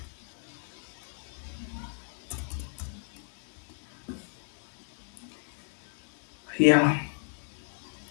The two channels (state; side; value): silent; right; 56 dB below the other